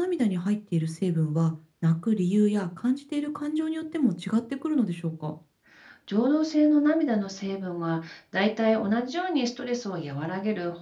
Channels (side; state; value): both; identical; correlation 1.00